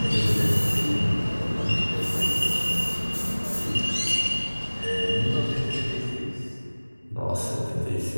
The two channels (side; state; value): both; inverted; correlation -1.00